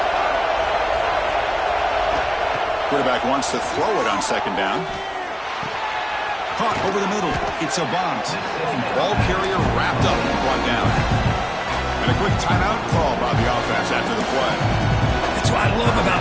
Quarterback wants to throw it on 2nd down. Caught over the middle. It's a bunt. Ball carrier wrapped up and brought down. And a quick timeout call by the offense after the play. That's what I love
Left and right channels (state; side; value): identical; both; correlation 1.00